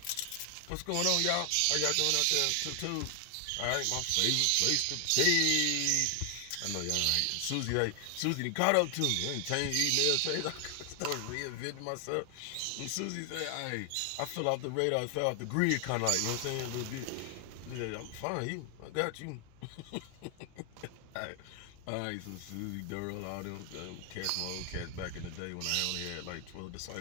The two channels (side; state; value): both; different; correlation 0.00